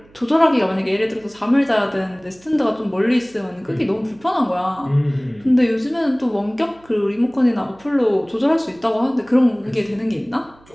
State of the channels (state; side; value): noise; right; hum, 28 dB below the sound